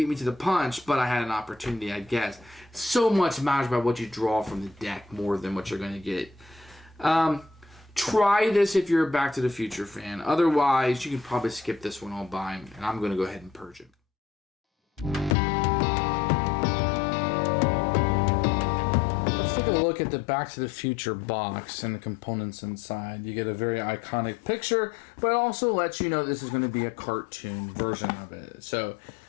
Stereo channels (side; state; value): right; drops out; at 15.4 s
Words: me to the punch, but I had an opportunity, I guess. So much matters about what you draw from the deck more than what you're going to get. Try this if you're a Back to the Future fan. Otherwise, you can probably skip this one all by, and I'm going to go ahead and purge it. Look at the Back to the Future box and the components inside. You get a very iconic picture, but it also lets you know this is going to be a cartoon version of it. So,